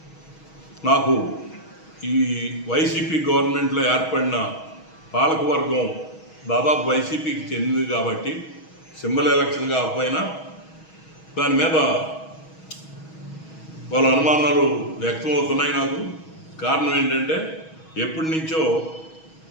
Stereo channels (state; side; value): late; right; 6.3 ms